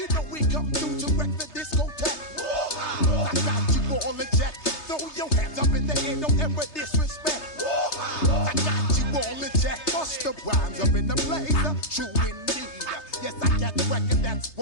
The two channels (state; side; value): late; right; 3.3 ms